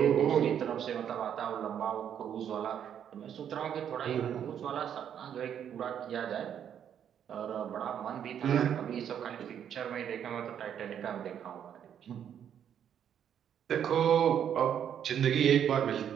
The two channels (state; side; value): quieter; left; 9.1 dB